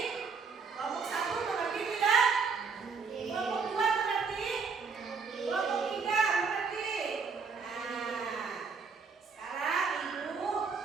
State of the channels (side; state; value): left; quieter; 5.2 dB